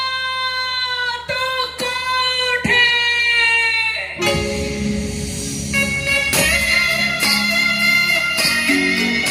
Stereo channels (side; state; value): both; identical; correlation 1.00